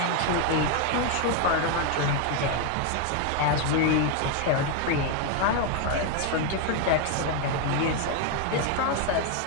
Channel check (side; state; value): both; different; correlation 0.01